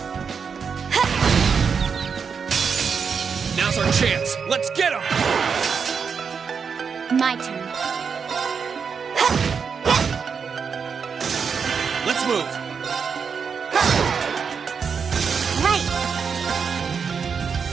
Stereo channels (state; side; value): quieter; left; 6.1 dB